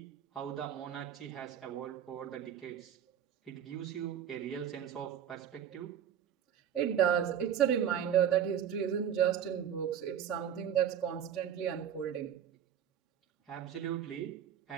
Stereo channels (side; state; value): left; quieter; 9.1 dB